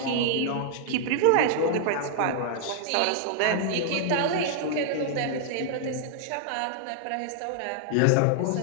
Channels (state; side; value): different; both; correlation -0.01